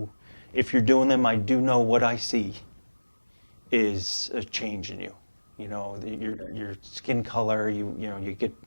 if you're doing them. I do know what I see is a change in you. Your skin color. You get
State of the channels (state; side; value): inverted; both; correlation -1.00